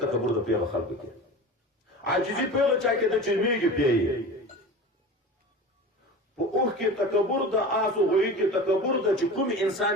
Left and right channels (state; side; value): normal; both; correlation 0.33